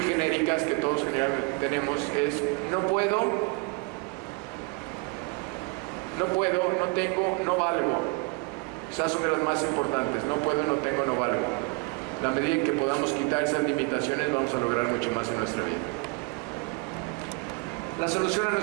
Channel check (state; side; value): quieter; left; 28.9 dB